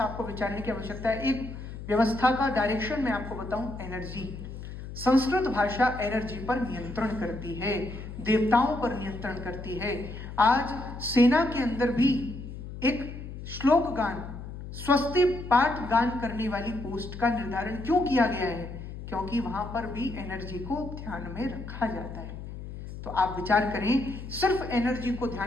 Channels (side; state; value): left; noise; hum, 10 dB below the sound